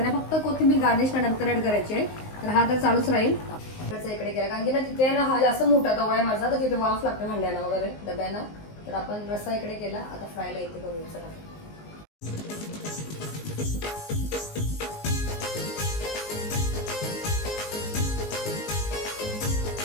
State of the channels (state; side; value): late; right; 19 ms